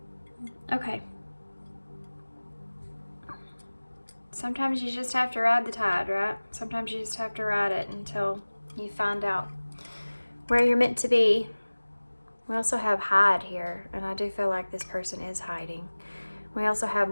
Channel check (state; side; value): inverted; both; correlation -1.00